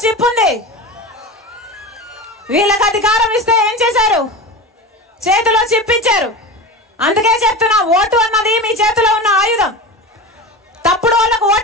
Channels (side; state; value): both; normal; correlation 0.28